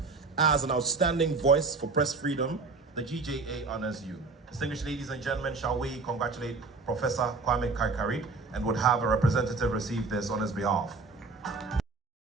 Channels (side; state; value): left; quieter; 4.0 dB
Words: as an outstanding voice for press freedom, the GJA honors you. Distinguished ladies and gentlemen, shall we congratulate Professor Kwame Kaikari and would have a representative receive this on his behalf.